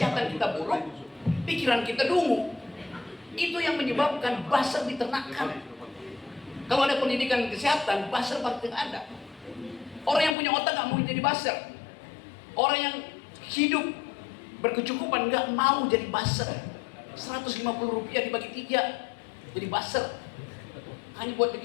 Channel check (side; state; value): right; drops out; at 10.4 s